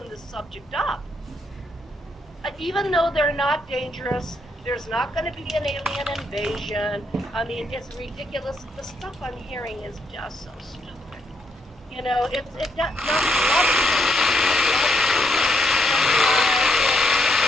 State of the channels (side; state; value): both; normal; correlation 0.77